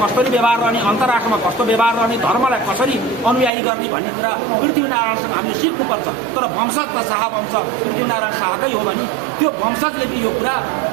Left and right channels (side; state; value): left; drops out; at 3.5 s